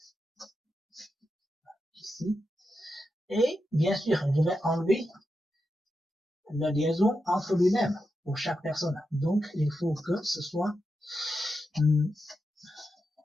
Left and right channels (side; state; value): both; normal; correlation 0.88